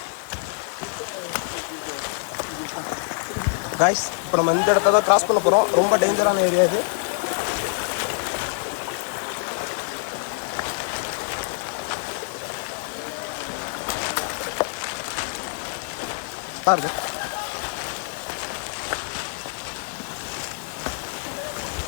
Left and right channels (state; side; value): silent; right; 61 dB below the other